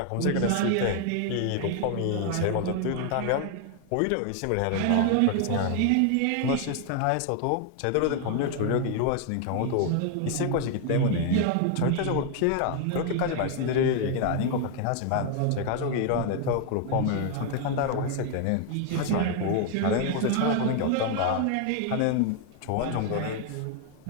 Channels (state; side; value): different; both; correlation 0.00